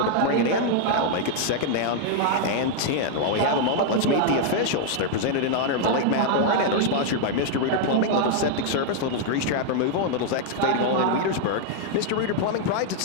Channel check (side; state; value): both; different; correlation 0.00